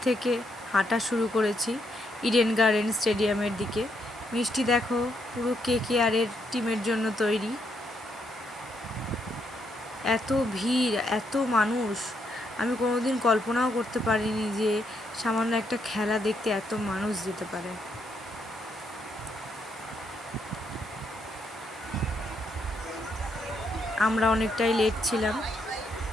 থেকে হাঁটা শুরু করেছি ইডেন গার্ডেন স্টেডিয়ামের দিকে। মিষ্টি দেখো পুরো কেকেআরের টিমের জন্য তৈরি। এত ভিড়, এত মানুষ, আমি কোনোদিন কল্পনাও করতে পারিনি যে সামান্য একটা খেলা দেখতে এত মানুষ যেতে পারে। আমরা অনেকটাই লেট ছিলাম,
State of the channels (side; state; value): both; normal; correlation 0.76